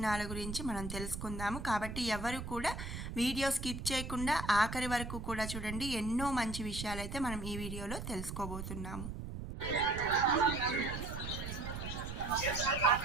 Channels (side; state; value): right; noise; rumble, 7 dB below the sound